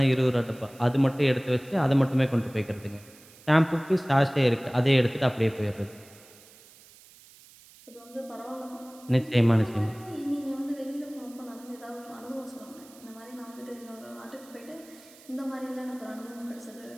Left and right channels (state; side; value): noise; right; hiss, 23 dB below the sound